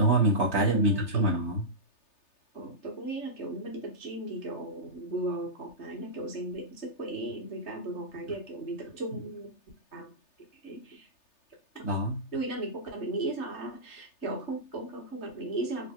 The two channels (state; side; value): late; right; 3.3 ms